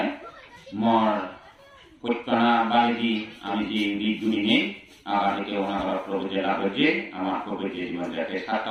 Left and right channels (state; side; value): identical; both; correlation 1.00